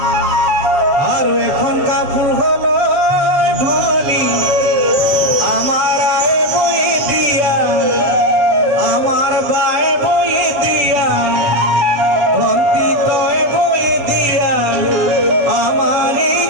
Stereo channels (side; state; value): left; late; 7.4 ms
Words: আর এখন কাপড় হলো ধনী আমার আয় বই দিয়া আমার বায় বই দিয়া ভন্তি তয় বই দিয়া আমার